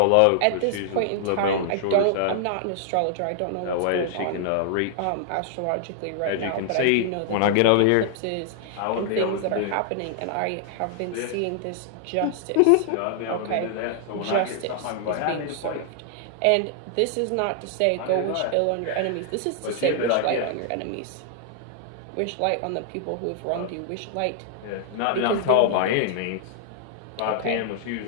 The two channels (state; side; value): different; both; correlation -0.01